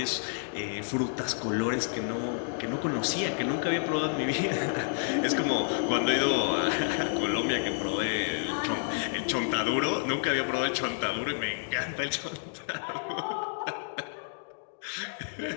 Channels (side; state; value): right; silent; digital silence